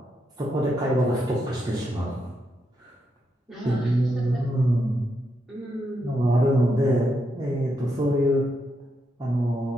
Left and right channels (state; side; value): normal; both; correlation 0.82